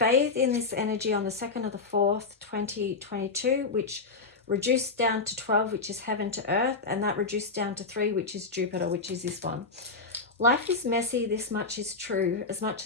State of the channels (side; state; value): right; quieter; 4.1 dB